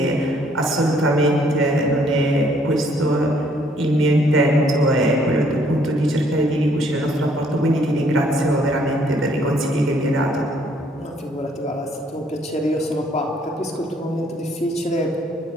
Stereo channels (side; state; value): both; normal; correlation 0.65